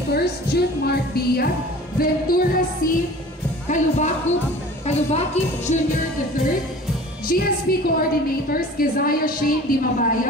Jude Mark Bia, Ventura C. Kalubaki Jr. III. GSP Coordinators Keziah Shane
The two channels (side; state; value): both; normal; correlation 0.43